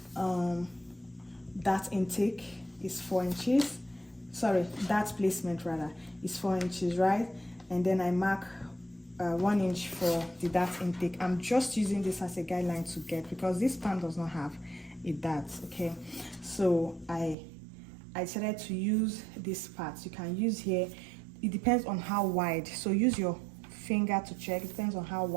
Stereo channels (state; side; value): drops out; left; at 17.4 s